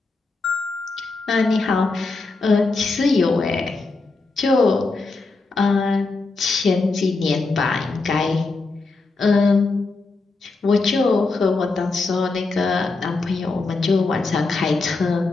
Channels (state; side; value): quieter; right; 3.7 dB